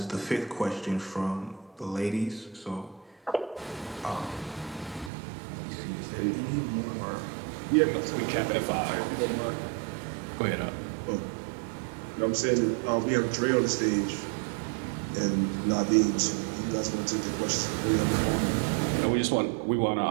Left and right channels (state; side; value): drops out; left; at 5.1 s